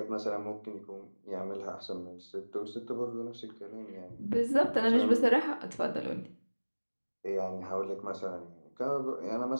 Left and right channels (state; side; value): inverted; both; correlation -1.00